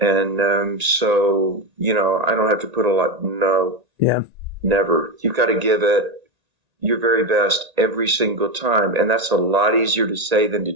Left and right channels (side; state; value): left; late; 1.9 ms